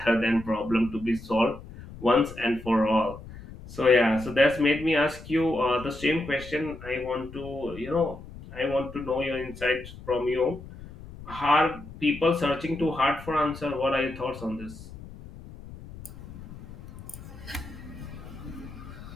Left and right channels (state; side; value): noise; left; rumble, 15 dB below the sound